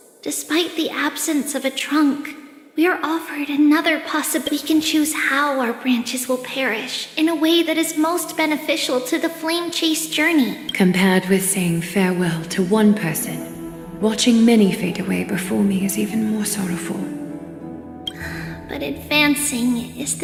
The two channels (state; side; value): identical; both; correlation 1.00